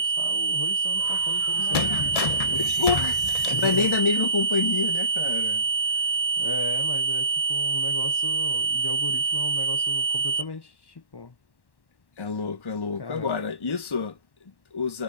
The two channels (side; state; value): right; late; 1.1 ms